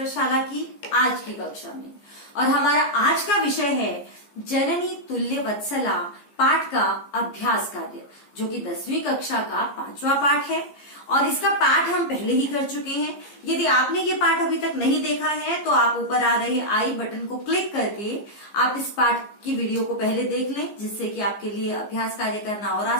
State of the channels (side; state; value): right; late; 15 ms